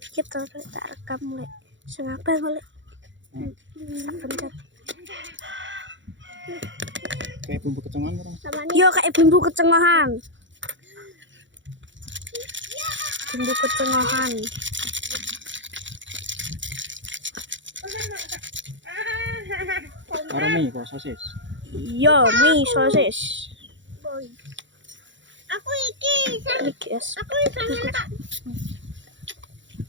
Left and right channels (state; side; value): late; left; 0.54 ms